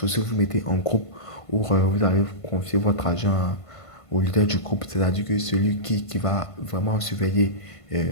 vous mettez en groupe où vous allez confier votre argent au leader du groupe, c'est-à-dire que celui qui va vraiment surveiller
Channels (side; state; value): right; late; 1.5 ms